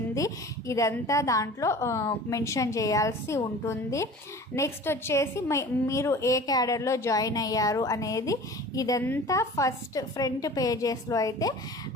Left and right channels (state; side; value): normal; both; correlation 0.41